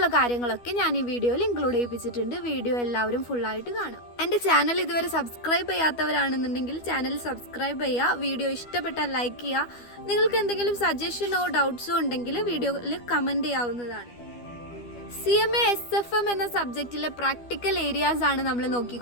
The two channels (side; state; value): right; late; 12 ms